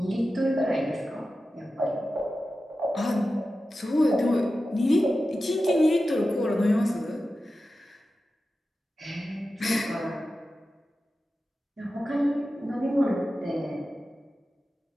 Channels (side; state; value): both; normal; correlation 0.93